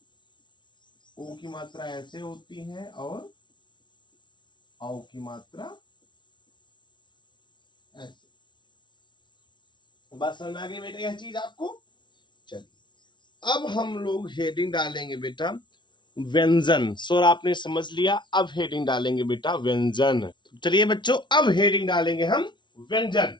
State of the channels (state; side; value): late; right; 0.23 ms